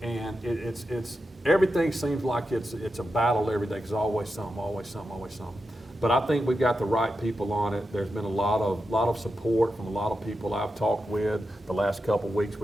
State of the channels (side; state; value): both; normal; correlation 0.89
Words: it's everything seems like it's a battle every day because always something, always something, always something. But I think we've got the right people on it. There's been a lot of support from a lot of people I've talked with the last couple of weeks